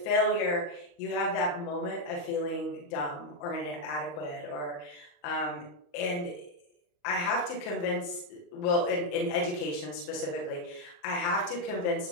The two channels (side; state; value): right; late; 34 ms